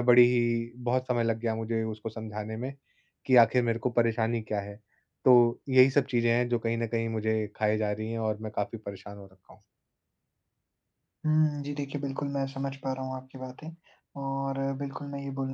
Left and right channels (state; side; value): identical; both; correlation 1.00